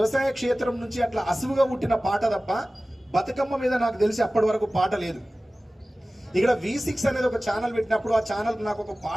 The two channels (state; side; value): normal; both; correlation 0.97